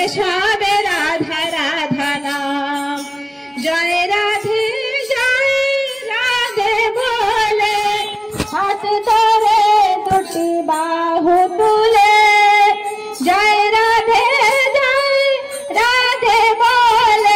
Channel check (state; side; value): identical; both; correlation 1.00